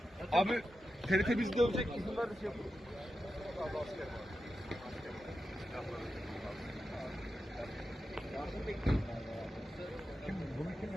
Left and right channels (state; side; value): normal; both; correlation 0.90